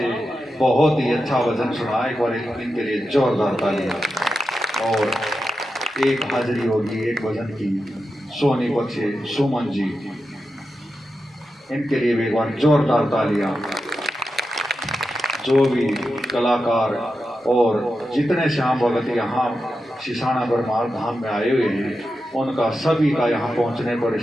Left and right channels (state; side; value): normal; both; correlation 0.89